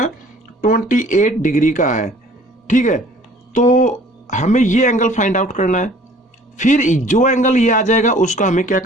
28 डिग्री का है। ठीक है, तो हमें ये एंगल फाइंड आउट करना है, फिर जो एंगल ये आ जाएगा उसका हमें क्या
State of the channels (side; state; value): both; normal; correlation 0.53